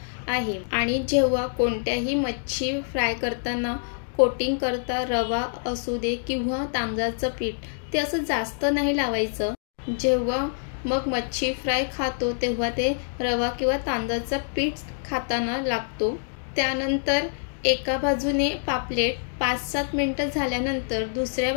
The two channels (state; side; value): silent; right; digital silence